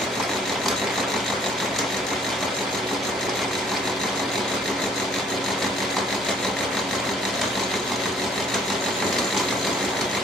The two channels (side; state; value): left; noise; rumble, 29 dB below the sound